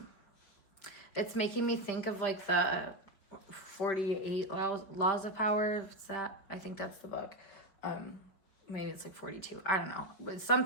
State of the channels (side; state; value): right; late; 5.2 ms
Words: It's making me think of like the 48 laws of power. What's that? I think that's the book. Maybe it's like 42. I don't know. It's